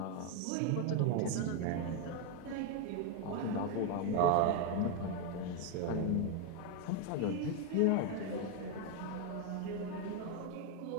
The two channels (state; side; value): different; both; correlation 0.02